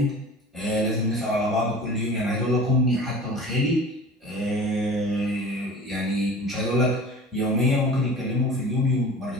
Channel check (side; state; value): both; normal; correlation 0.39